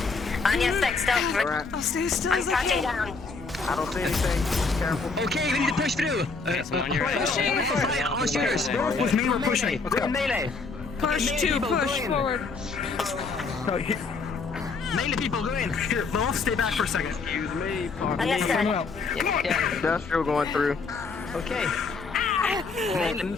On your six, don't. Alright. I'll stay still I'm as I crouching can. down. I don't see anything. Careful. Okay, we need to push through. Pushing. All shooters. With me, we're pushing. Go in melee. Push to push forward. Melee people, go in. Here, I'll stay back for a second. Excuse me. Understood. Industrial going through. Okay.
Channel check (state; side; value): quieter; right; 4.3 dB